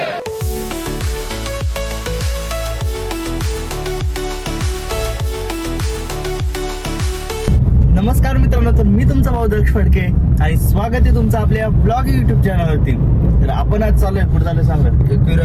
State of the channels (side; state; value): both; identical; correlation 1.00